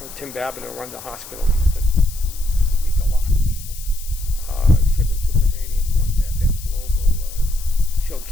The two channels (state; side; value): noise; left; hiss, 15 dB below the sound